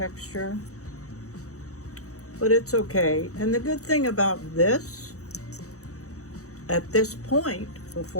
But it's okay. And the good thing about this, at this point,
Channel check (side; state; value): right; late; 0.65 ms